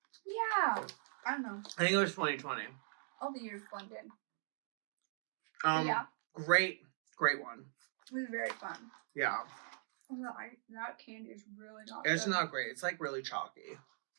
Yeah, I don't know. I think it was 2020. All the years blended. Yeah. Great one. It was very fun. Yeah. That candy is really not It's good. not great. It's like really chalky.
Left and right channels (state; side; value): silent; left; digital silence